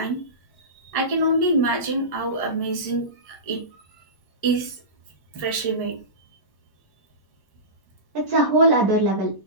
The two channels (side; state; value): right; late; 1.1 ms